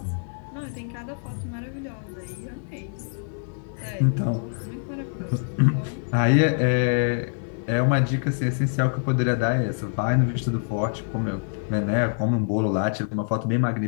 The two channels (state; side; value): silent; right; digital silence